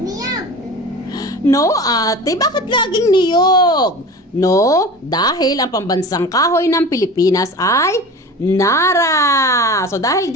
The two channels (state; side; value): normal; both; correlation 0.35